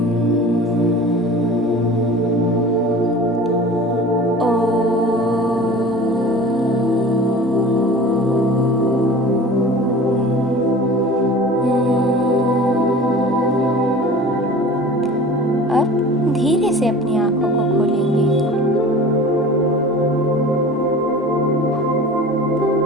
अब धीरे से अपनी आंखों को खोलेंगे।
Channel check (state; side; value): normal; both; correlation 0.40